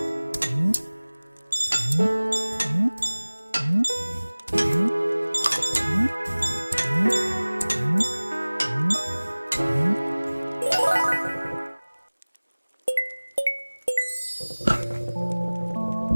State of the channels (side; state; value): both; inverted; correlation -1.00